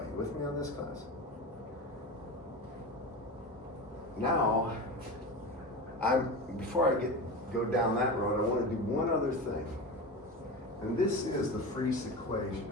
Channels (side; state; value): both; normal; correlation 0.26